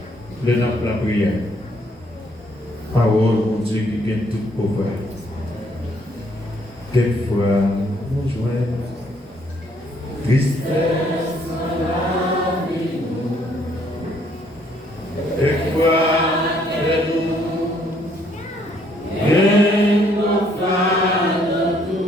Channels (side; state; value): both; normal; correlation 0.67